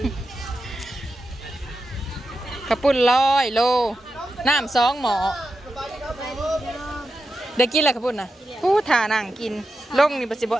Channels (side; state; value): both; normal; correlation 0.89